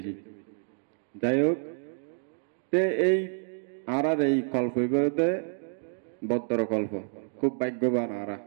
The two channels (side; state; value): left; silent; 59 dB below the other